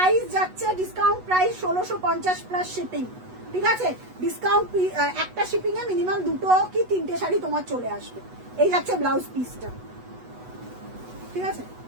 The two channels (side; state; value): left; late; 8.1 ms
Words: যাচ্ছে ডিসকাউন্ট প্রাইস 1650 প্লাস শিপিং, ঠিক আছে। ডিসকাউন্ট একটা শিপিং এ মিনিমাম দুটো কি তিনটে শাড়ি তোমার চলে আসবে। এই যাচ্ছে ব্লাউজ পিসটা, ঠিক আছে,